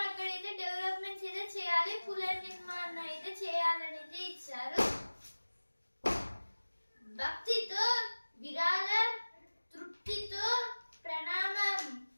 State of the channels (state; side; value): inverted; both; correlation -1.00